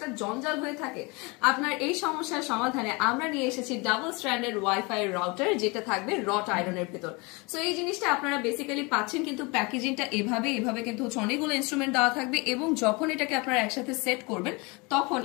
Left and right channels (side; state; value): right; quieter; 27.6 dB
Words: জঞ্জাল হয়ে থাকে? আপনার এই সমস্যার সমাধানে আমরা নিয়ে এসেছি ডাবল স্ট্র্যান্ডেড ওয়াইফাই রাউটার, যেটা থাকবে রট আয়রনের ভেতর। সো এই জিনিসটা আপনারা বেসিক্যালি পাচ্ছেন, কিন্তু প্যাকেজিংটা এভাবে কিন্তু হচ্ছে অনেকগুলো ইনস্ট্রুমেন্ট দেওয়া থাকবে এবং যখন এটাকে আপনারা একসাথে সেট করবেন তখন